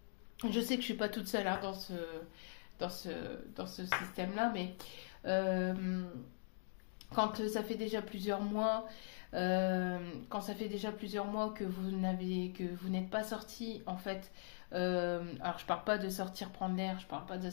sais que je suis pas toute seule dans ce système-là, mais quand ça fait déjà plusieurs mois, que vous n'êtes pas sorti, en fait. Alors je parle pas de sortir prendre l'air, je parle pas de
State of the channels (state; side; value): silent; right; digital silence